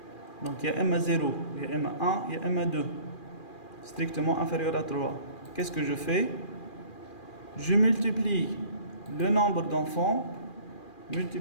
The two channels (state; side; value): late; right; 2.4 ms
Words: Donc il y a M0, il y a M1, il y a M2 strictement inférieur à 3. Qu'est-ce que je fais? Je multiplie le nombre d'enfants,